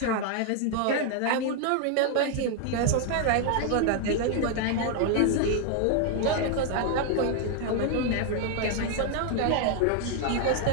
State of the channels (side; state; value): both; different; correlation 0.00